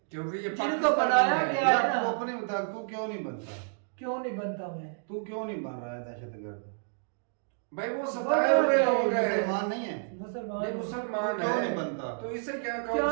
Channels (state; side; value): silent; left; digital silence